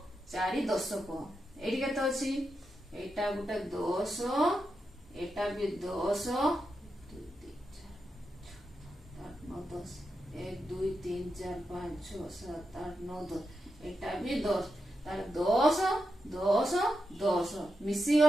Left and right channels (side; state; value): both; normal; correlation 0.87